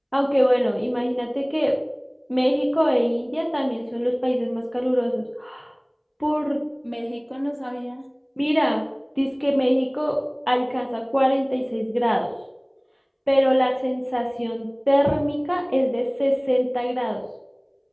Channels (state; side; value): identical; both; correlation 1.00